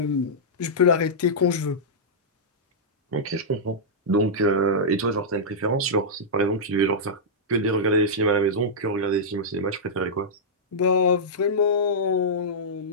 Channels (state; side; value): normal; both; correlation -0.11